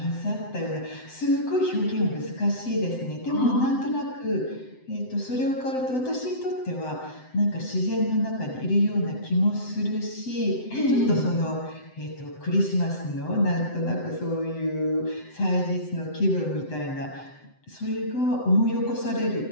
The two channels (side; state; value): right; late; 7.8 ms